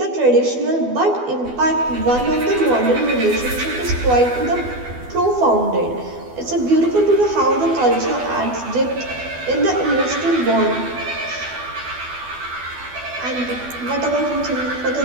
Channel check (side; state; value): left; late; 12 ms